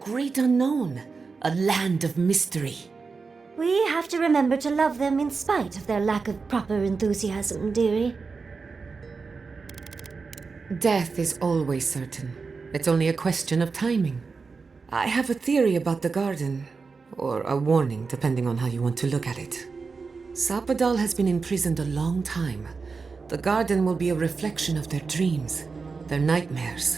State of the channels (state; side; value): quieter; left; 4.7 dB